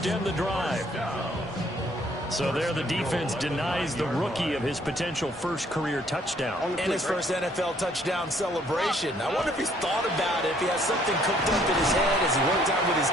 the drive. So there the defense denies the rookie of his potential first career touchdown. And his first NFL touchdown celebration. I wonder if he's thought about it, if he has something cooked up in his head as he worked out with his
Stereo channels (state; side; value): normal; both; correlation 0.63